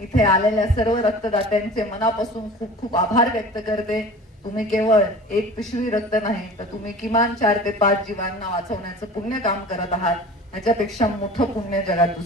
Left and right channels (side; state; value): both; normal; correlation 0.40